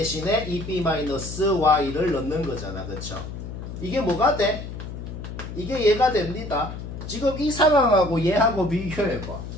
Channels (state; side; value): noise; left; hum, 9 dB below the sound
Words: 2b-y를 넣는 거잖아. 그쵸? 이게 뭐가 돼? 이게 얘가 됩니다. 지금 이 상황하고 얘하고 비교해봐.